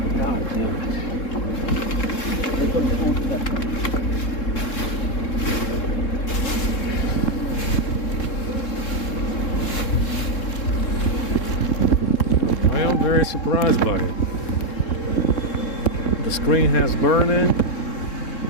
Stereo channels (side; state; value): right; late; 3.7 ms